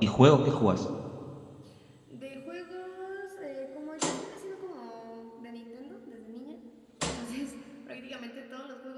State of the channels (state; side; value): identical; both; correlation 1.00